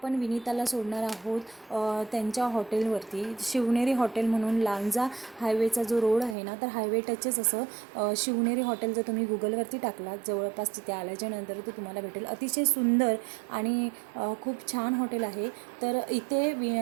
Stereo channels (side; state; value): left; drops out; at 6.4 s